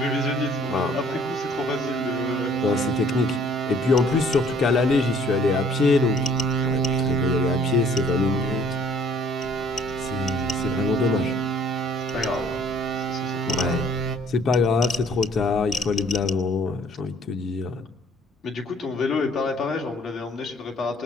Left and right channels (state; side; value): normal; both; correlation 0.57